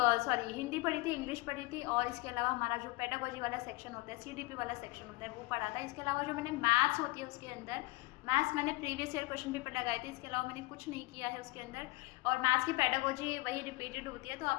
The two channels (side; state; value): right; quieter; 23.0 dB